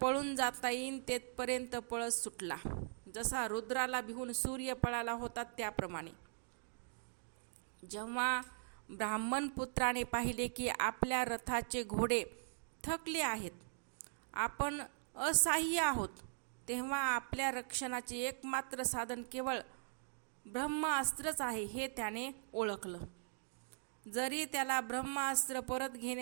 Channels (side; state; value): left; silent; digital silence